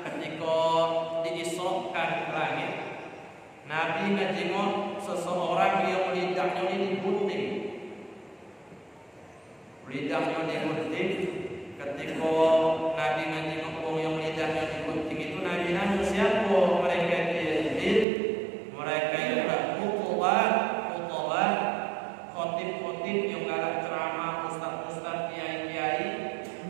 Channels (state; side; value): drops out; left; at 18.1 s